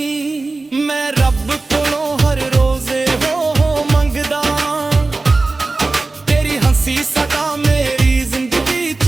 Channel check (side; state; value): left; quieter; 3.5 dB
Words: ਮੈਂ ਰੱਬ ਕੋਲੋਂ ਹਰ ਰੋਜ਼ ਹੋ ਮੰਗਦਾ, ਤੇਰੀ ਹੰਸੀ ਸਦਾ ਮੇਰੀ ਜ਼ਿੰਦਗੀ